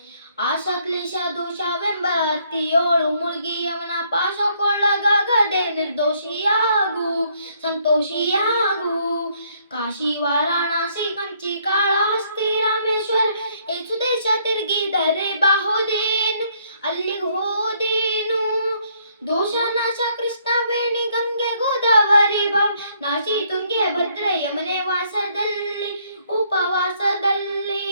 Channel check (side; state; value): both; inverted; correlation -0.67